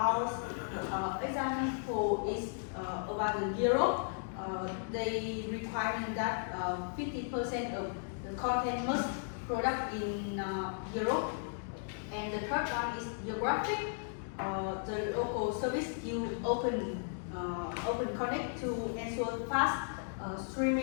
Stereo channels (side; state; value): right; silent; digital silence